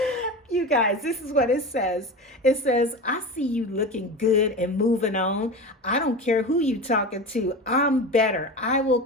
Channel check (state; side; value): normal; both; correlation 0.28